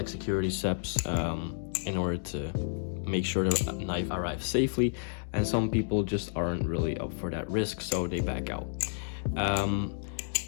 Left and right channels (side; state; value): right; silent; digital silence